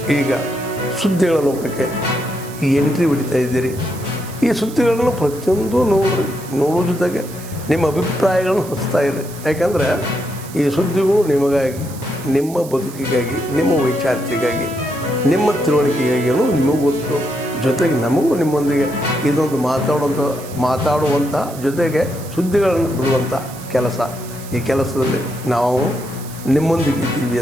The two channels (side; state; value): right; noise; hiss, 17 dB below the sound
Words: ಈಗ ಸುದ್ದಿಗಳ ಲೋಕಕ್ಕೆ ಎಂಟ್ರಿ ಹೊಡಿತಾ ಇದ್ದೀರಿ. ಈ ಸುದ್ದಿಗಳನ್ನು ಪ್ರತಿಯೊಂದು ನೋಡೋ ಜೊತೆಗೆ ನಿಮ್ಮ ಅಭಿಪ್ರಾಯಗಳನ್ನು ಹಚ್ತಾ ಇರಿ. ಯಾಕಂದರೆ ಈ ಸುದ್ದಿಗಳು ನಿಮಗಾಗಿ, ನಿಮ್ಮ ಬದುಕಿಗಾಗಿ, ನಿಮ್ಮ ವೈಚಾರಿಕೆಗಾಗಿ, ನಿಮ್ಮ ತಿಳುವಳಿಕೆಗಾಗಿಯೂ ನಿಮಗೂ ಗೊತ್ತು. ಜೊತೆಗೆ ನಮಗೂ ನಿಮ್ಮೊಂದಿಗೆ ಇದೊಂದು ಮಾತಾಡುವಂಥ ಜೊತೆಗೆ ಸುದ್ದಿಗಳನ್ನು ಬಿಡುವಂಥ ಕೆಲಸ. ಈ ಕೆಲಸದಲ್ಲಿ ನಾವು ನಿಮ್ಮೊಂದಿಗೆ ಇದ್ದೀವಿ